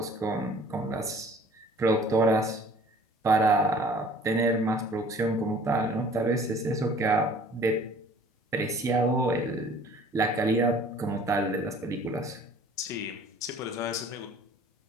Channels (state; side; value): normal; both; correlation 0.51